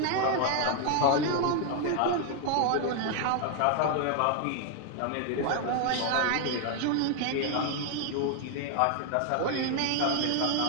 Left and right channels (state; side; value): different; both; correlation 0.00